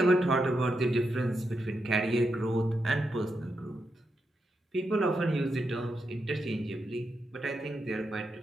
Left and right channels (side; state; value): both; normal; correlation 0.85